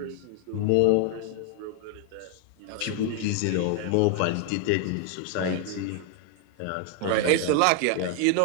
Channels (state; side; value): different; both; correlation 0.00